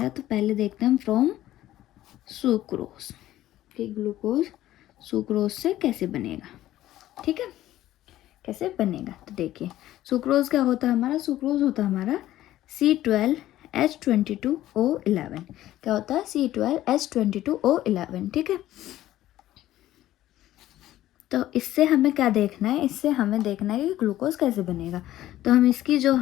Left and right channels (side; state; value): right; quieter; 14.1 dB